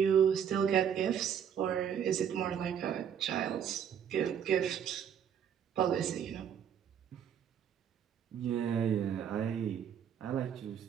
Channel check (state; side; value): quieter; left; 8.5 dB